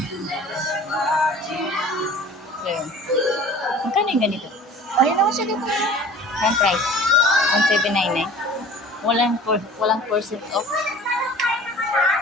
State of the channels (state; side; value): normal; both; correlation 0.45